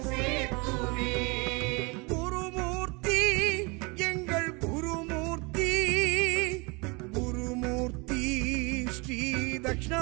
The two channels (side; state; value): left; quieter; 28.1 dB